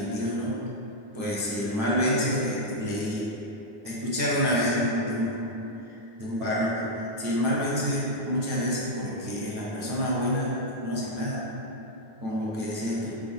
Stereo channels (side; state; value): left; late; 9.2 ms